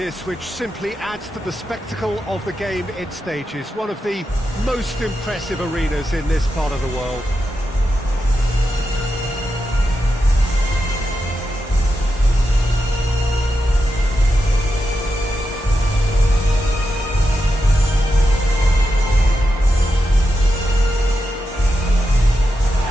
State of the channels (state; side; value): normal; both; correlation 0.87